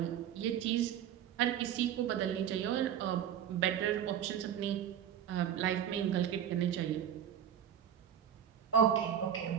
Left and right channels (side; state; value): left; quieter; 9.4 dB